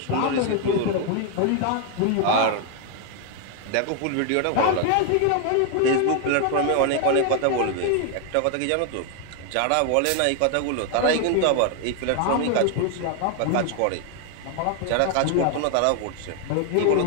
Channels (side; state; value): both; different; correlation 0.01